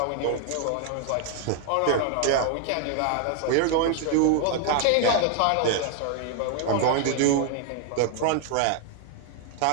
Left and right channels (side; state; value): both; different; correlation 0.00